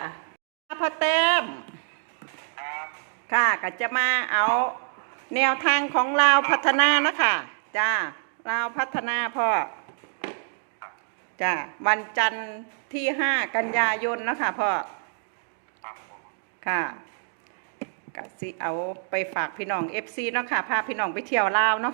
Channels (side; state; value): left; silent; digital silence